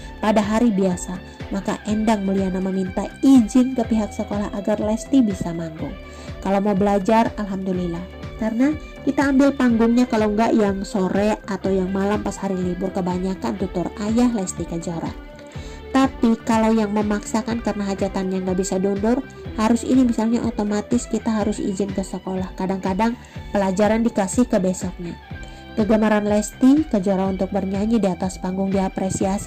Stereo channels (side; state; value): both; identical; correlation 1.00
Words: pada hari biasa, maka Endang Mulyana meminta izin ke pihak sekolah agar Lesti bisa manggung. Kalau mau belajar, alhamdulillah. Karena kita ambil panggungnya kalau enggak yang sore atau yang malam pas hari libur, kebanyakan tutur ayah Lesti Kejora. Tapi kalau yang memaksakan karena hajatannya nggak bisa diundur, harus ini misalnya otomatis kita harus izin ke sekolah. Kadang-kadang pelajaran dikasih ke besoknya. Kegemaran Lesti Kejora untuk bernyanyi di atas panggung